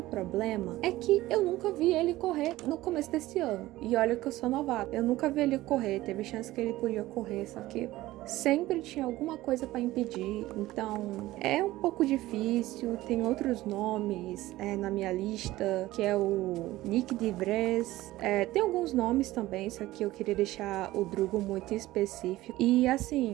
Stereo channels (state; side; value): quieter; left; 16.9 dB